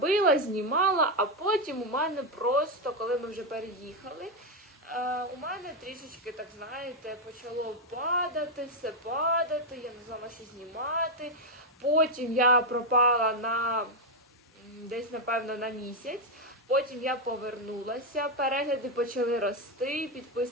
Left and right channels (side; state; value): both; normal; correlation 0.03